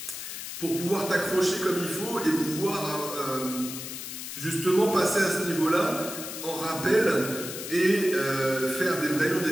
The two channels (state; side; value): noise; left; hiss, 8 dB below the sound